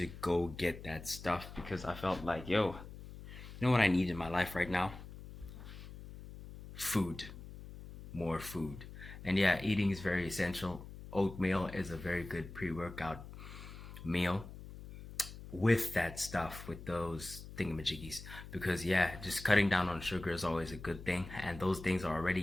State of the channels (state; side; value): noise; left; hum, 13 dB below the sound